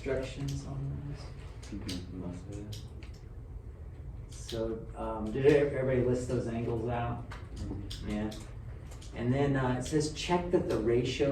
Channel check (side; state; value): both; identical; correlation 1.00